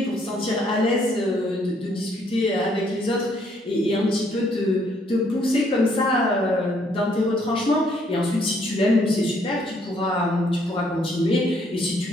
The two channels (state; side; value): normal; both; correlation 0.68